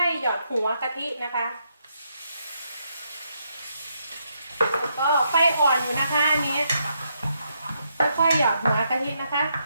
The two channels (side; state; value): both; inverted; correlation -0.78